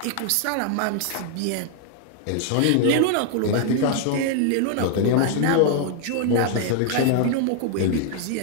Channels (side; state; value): both; different; correlation 0.00